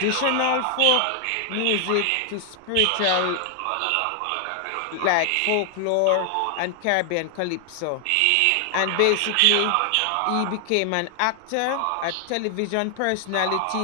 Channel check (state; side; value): different; both; correlation 0.00